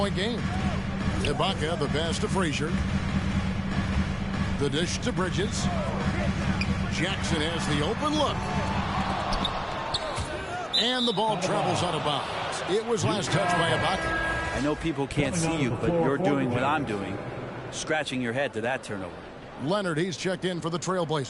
game. Ibaka the pass to Frazier. The dish to Bridges. Jackson has the open look. And the ball travels out of bounds. It was last touched by Ibaka. I know people can't see you, but you're doing what I'm doing. Scratching your head to that turnover. Leonard, he's checked in for the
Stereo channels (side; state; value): both; identical; correlation 1.00